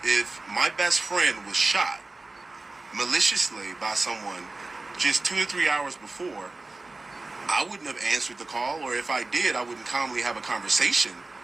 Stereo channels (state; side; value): quieter; left; 3.3 dB